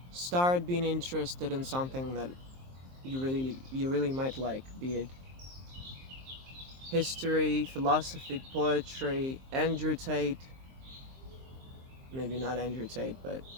Start being interested in something that you really might like, be it history, philosophy, poetry, Andrew Tate. Maybe not Andrew Tate, but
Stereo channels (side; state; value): left; late; 23 ms